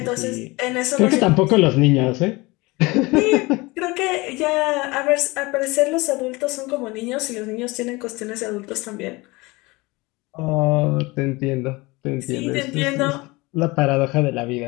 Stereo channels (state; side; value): quieter; right; 23.4 dB